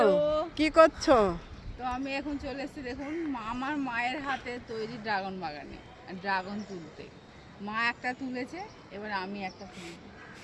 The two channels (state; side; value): identical; both; correlation 1.00